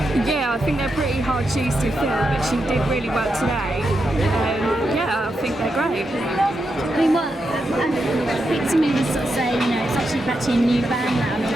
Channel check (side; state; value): both; normal; correlation 0.85